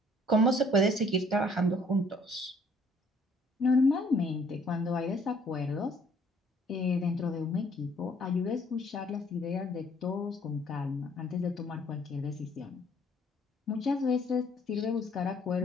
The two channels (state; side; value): normal; both; correlation 0.61